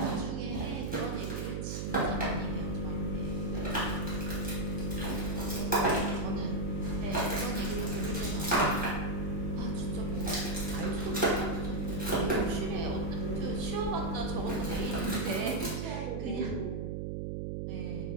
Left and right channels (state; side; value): noise; right; hum, 2 dB below the sound